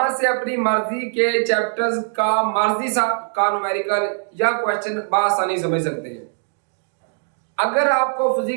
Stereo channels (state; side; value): silent; left; 65 dB below the other